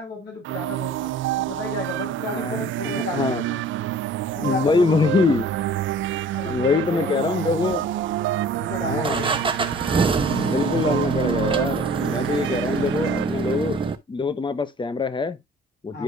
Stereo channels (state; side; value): normal; both; correlation 0.48